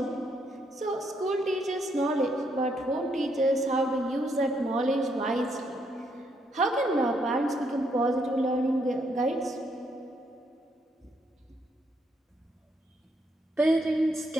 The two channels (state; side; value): normal; both; correlation 0.75